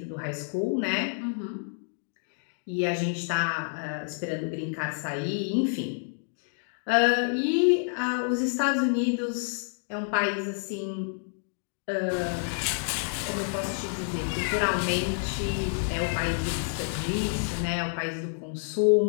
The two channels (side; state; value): right; silent; digital silence